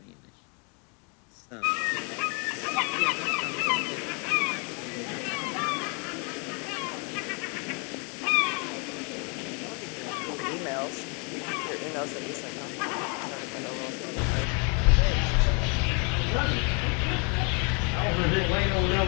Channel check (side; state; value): right; quieter; 35.3 dB